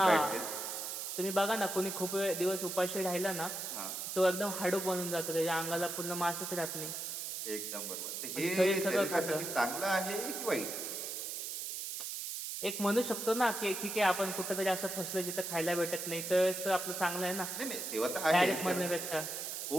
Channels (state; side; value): noise; right; hiss, 5 dB below the sound